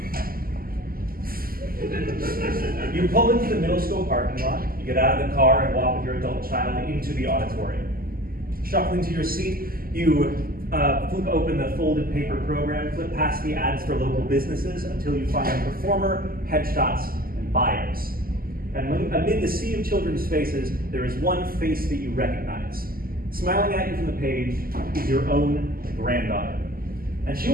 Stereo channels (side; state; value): left; late; 0.42 ms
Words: You pull into the middle school parking lot, you get out of the car and walk with your adult child into the auditorium. Shuffling to your seat, you flip open the folded paper program, flip past the ads for local businesses until you find a performer, headshots, and bios. And amid the sea of children's faces, there is one face that you recognize. Smiling at you from the page is your own granddaughter. And she